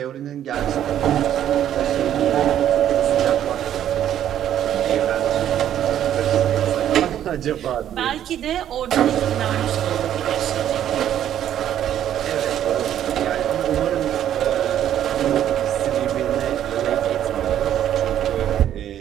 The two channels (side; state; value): left; quieter; 10.8 dB